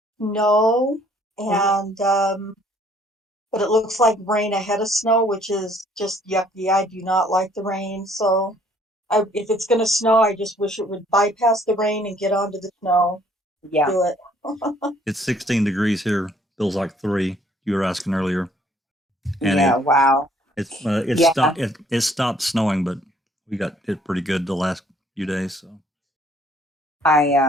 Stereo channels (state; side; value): normal; both; correlation 0.61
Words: and but it looks like rain ahead of snow, which is just yucky. I do not like the rain, so if it's going to snow, I just wish it would bypass the rain and get onto the snow. Yeah. Do it. It's 16 degrees here. Feels like 3. You were asking earlier. And yeah, wow. It stopped snowing, but we got it pretty good the last few days. So